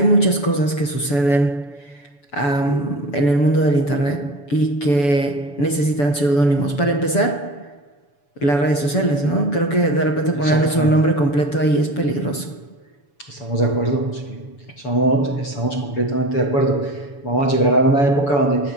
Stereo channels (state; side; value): late; right; 7.0 ms